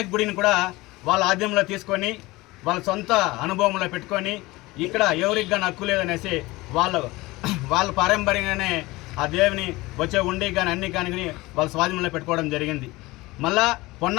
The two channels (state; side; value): quieter; right; 20.8 dB